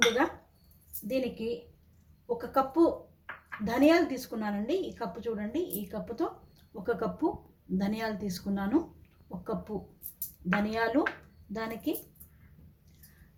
దీనికి 1 కప్పు ధనియాలు తీసుకున్నానండి. ఈ కప్పు చూడండి, ఈ కప్పుతో 1 కప్పు ధనియాలు తీసుకున్నాను. 1 కప్పు ధనియాలు, దానికి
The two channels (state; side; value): identical; both; correlation 1.00